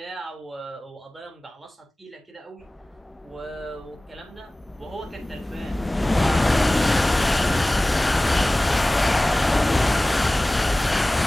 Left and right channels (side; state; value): both; normal; correlation 0.98